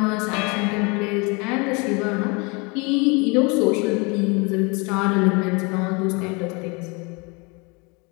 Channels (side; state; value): right; quieter; 29.8 dB